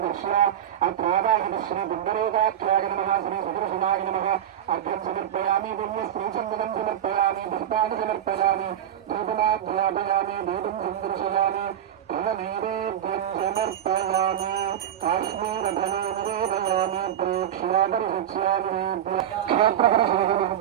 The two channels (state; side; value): quieter; left; 10.4 dB